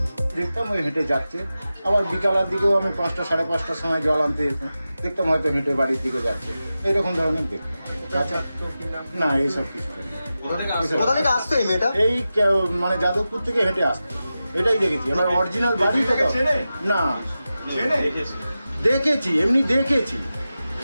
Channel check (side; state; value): both; inverted; correlation -0.93